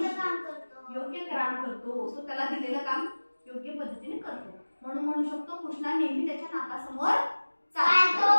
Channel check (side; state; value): both; inverted; correlation -1.00